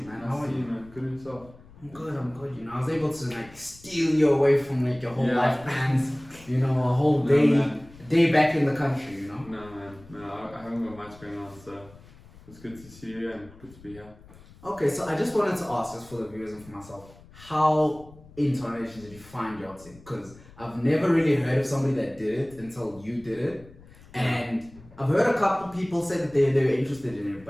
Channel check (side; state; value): left; noise; rumble, 22 dB below the sound